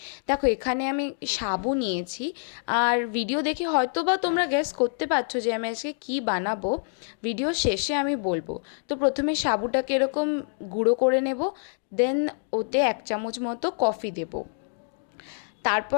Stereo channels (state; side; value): silent; right; digital silence